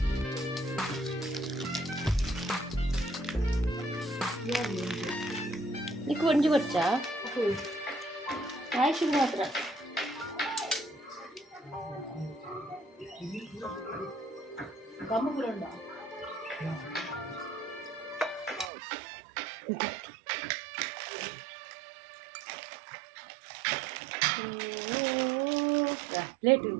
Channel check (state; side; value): drops out; left; at 18.7 s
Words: నీకు వండి వచ్చా ఆయుష్ మాత్ర